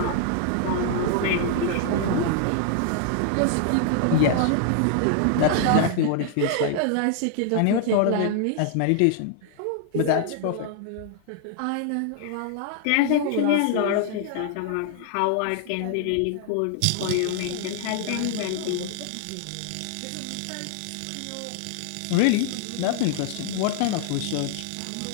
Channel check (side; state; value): both; different; correlation 0.00